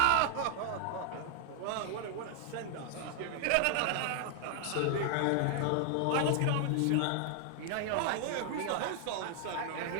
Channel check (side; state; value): both; different; correlation 0.00